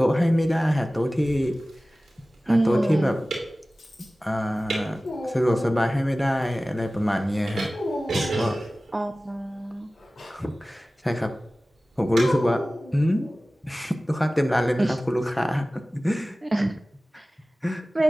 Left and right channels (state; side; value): normal; both; correlation 0.97